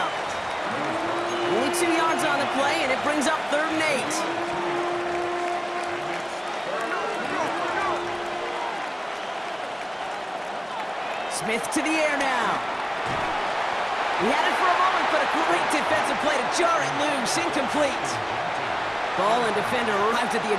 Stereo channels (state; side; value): identical; both; correlation 1.00